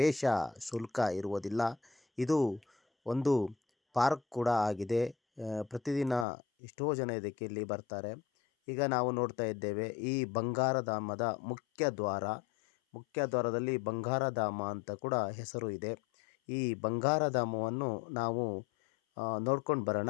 ಶುಲ್ಕ ಇರುವುದಿಲ್ಲ. ಇದು ಒಂದು ಪಾರ್ಕ್ ಕೂಡ ಆಗಿದೆ. ಪ್ರತಿದಿನ ಎಷ್ಟೋ ಜನ ಇದಕ್ಕೆ ಇಲ್ಲಿ ಬರ್ತಾರೆ. ಈಗ ನಾವು ನೋಡ್ತಾ ಇದ್ದೇವೆ ಈ ಬಂಗಾರಧಾಮದ ಮುಖ್ಯ ದ್ವಾರದಲ್ಲಿ ಬಂಗಾರಧಾಮ ಅಂತ ಕೂಡ ಹೆಸರು ಇದೆ. ಈ ಬಂಗಾರಧಾಮವನ್ನು ನಾವು ನೋಡ್ಕೊಂಡು ಬರೋಣ,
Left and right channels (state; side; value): drops out; right; at 6.2 s